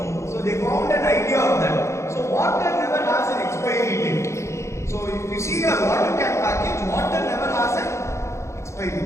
So they found an idea of that. So water never has an expiry date. So if you see a water can package, water never has an expiry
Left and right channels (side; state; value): right; late; 0.14 ms